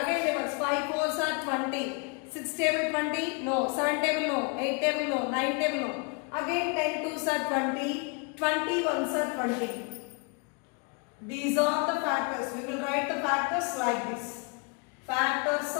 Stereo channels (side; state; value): right; quieter; 33.6 dB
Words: tables, 5 4s are 20, 6 table 20, no, 7 table no, 8 table no, 9 table no. Again 10 2s are 20, 20 1s are 20. These are the factors. We will write the factors like this. Factors